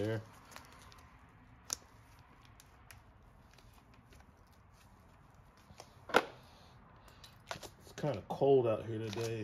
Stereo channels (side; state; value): both; identical; correlation 1.00